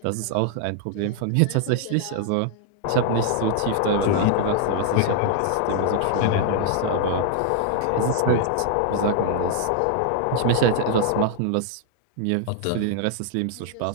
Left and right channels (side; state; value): both; different; correlation -0.01